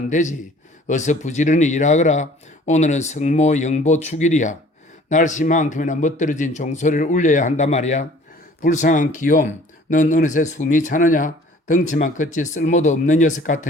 되지. 어서 부지런히 일하거라. 오늘은 성모 영보 축일이야. 날씨만큼이나 멋들어진 종소리를 울려야 한단 말이야. 불쌍한 기욤, 넌 어느새 숨이 차느냐? 덩치만 컸지 쓸모도 없는 녀석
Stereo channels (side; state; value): both; normal; correlation 0.52